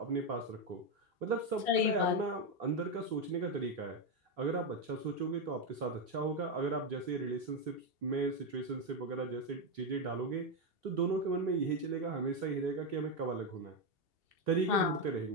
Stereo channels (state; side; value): late; left; 3.3 ms